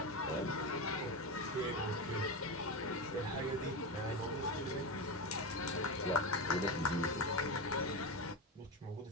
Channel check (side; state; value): both; normal; correlation 0.17